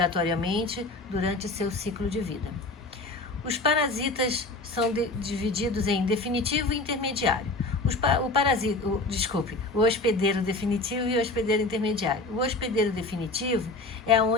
durante seu ciclo de vida. Os parasitas são divididos em definitivo e intermediário. O hospedeiro definitivo e o hospedeiro intermediário. O hospedeiro definitivo é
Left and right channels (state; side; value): quieter; right; 3.1 dB